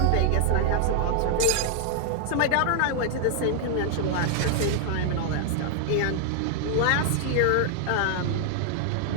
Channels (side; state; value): both; different; correlation 0.00